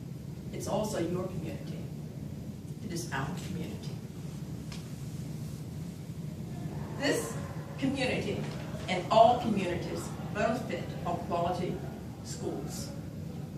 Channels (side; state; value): both; identical; correlation 1.00